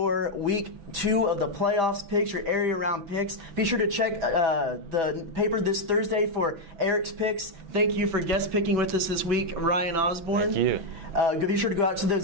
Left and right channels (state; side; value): late; left; 6.0 ms